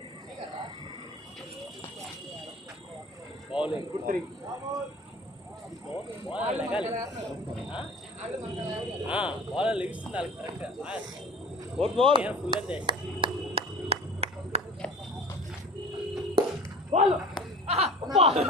గుడ్ 3 బాల్ లెగిస్తుంది కరెక్ట్. Good ball. ఫుల్ అంతే.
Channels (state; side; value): normal; both; correlation 0.41